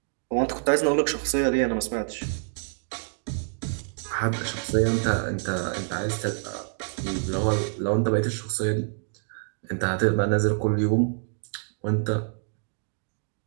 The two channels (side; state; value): left; silent; 60 dB below the other